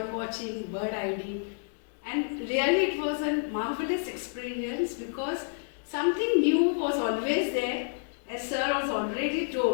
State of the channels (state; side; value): silent; right; digital silence